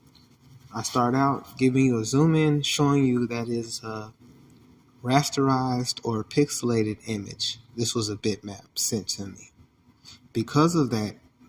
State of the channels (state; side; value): identical; both; correlation 1.00